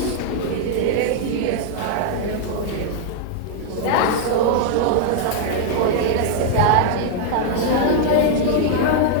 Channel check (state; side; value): different; both; correlation 0.00